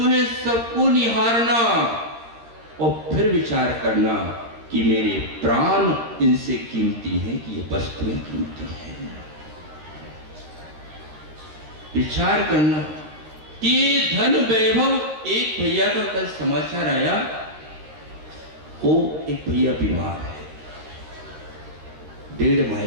सबको निहारना, और फिर विचार करना कि मेरे प्राण इनसे कीमती हैं कि ये वस्तुएं कीमती हैं। विचार करना कि धन वैभव। एक भैया का कल समाचार आया, वो एक भैया बीमार है, 1.5 माह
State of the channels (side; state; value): left; late; 13 ms